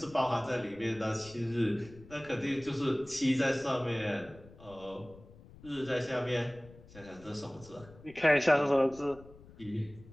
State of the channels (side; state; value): left; noise; rumble, 21 dB below the sound